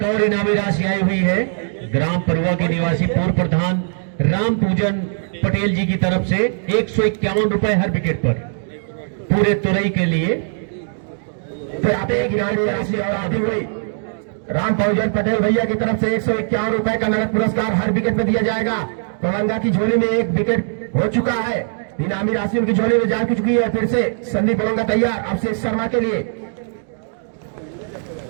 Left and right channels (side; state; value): left; silent; digital silence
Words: और इनामी राशि आई हुई है ग्राम परुआ के निवासी पूर्व प्रधान राम पूजन पटेल जी की तरफ से 151 रुपए हर विकेट पर पूरे तुरई के लिए। फिर आते एक इनामी राशि और आती हुई राम पूजन पटेल भैया की तरफ से 151 रुपए का नगद पुरस्कार हर विकेट में दिया जाएगा। ओलंगा की झोली में 1 विकेट हो चुका है, इनामी राशि उनकी झोली में जा चुकी है। फिर से संदीप ओलंगा तैयार अभिषेक शर्मा के लिए।